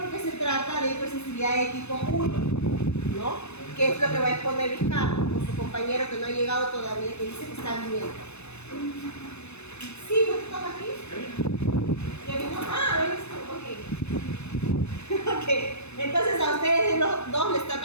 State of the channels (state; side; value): late; right; 0.81 ms